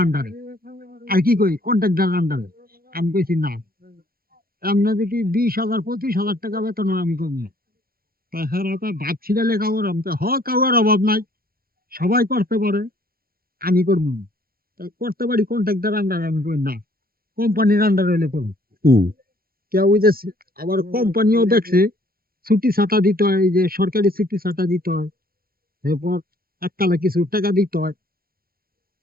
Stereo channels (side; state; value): left; late; 0.43 ms